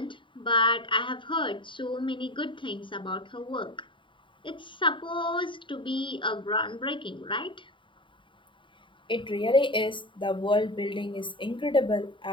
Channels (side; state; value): right; late; 0.24 ms